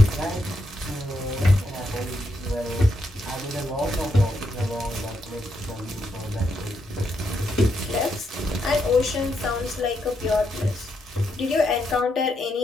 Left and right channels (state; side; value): normal; both; correlation 0.81